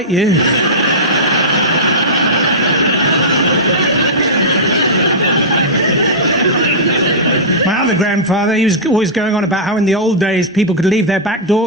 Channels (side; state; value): both; normal; correlation -0.12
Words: you." My other grandfather, he was always going on about how in the old days people could leave their back